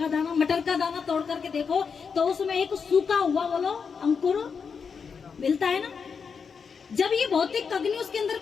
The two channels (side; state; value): right; quieter; 5.9 dB